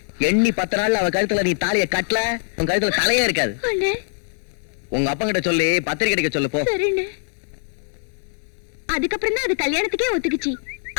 எண்ணி 10 நாள்ல அவ கழுத்துல நீ தாலிய கட்டல, உன் கழுத்துல தலையே இருக்காது. உங்க அப்பா கிட்ட சொல்லி பத்திரிக்கை அடிக்க சொல்லு போ. அதுக்கப்புறம் தான் அது கல்யாணத்துக்கே ஒத்துக்குச்சு.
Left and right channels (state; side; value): silent; right; 64 dB below the other